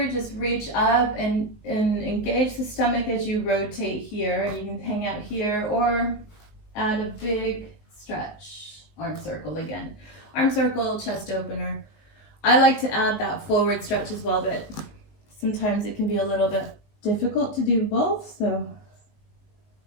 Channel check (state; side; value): late; right; 19 ms